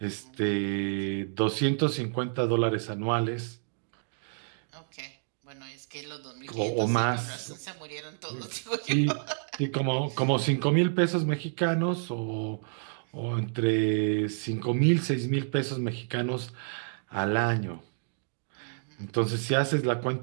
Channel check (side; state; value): left; silent; digital silence